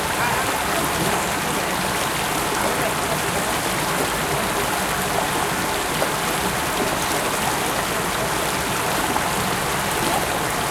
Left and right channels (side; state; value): both; identical; correlation 1.00